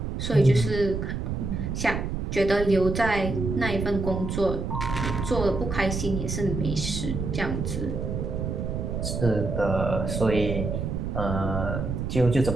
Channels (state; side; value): noise; right; rumble, 3 dB below the sound